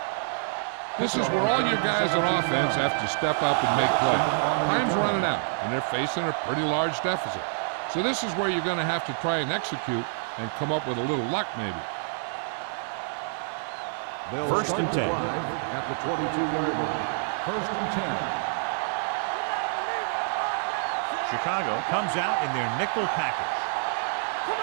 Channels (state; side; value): silent; left; digital silence